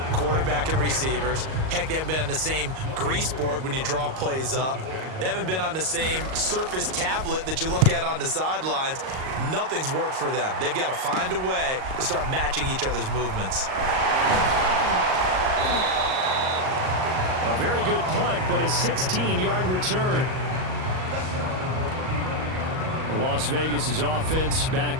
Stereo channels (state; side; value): late; left; 38 ms